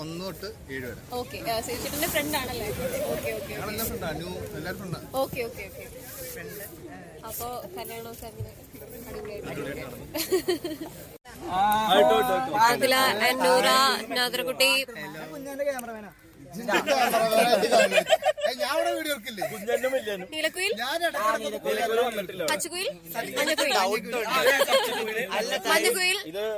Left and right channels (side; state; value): both; identical; correlation 1.00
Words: 1 തൊട്ട് 7 വരെ. ഓക്കെ, ശിവചേട്ടന്റെ ഫ്രണ്ട് ആണല്ലേ? Okay okay okay okay okay. അപ്പോ കല്യാണമൊക്കെ അങ്ങനെ ആദില, നൂറ, നാദർകുട്ടി, നീലക്കുയിൽ, പച്ചക്കുയിൽ, മഞ്ഞക്കുയിൽ, മഞ്ഞക്കുയിൽ,